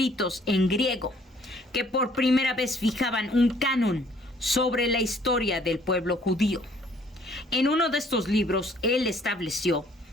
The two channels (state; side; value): normal; both; correlation 0.60